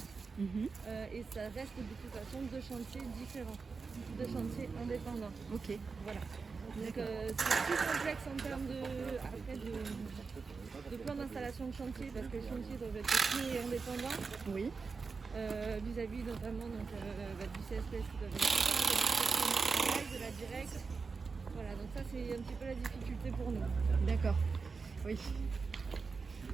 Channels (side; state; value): left; quieter; 4.8 dB